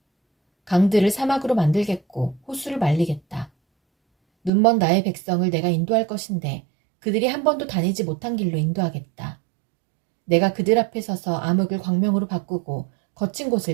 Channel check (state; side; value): drops out; left; at 4.5 s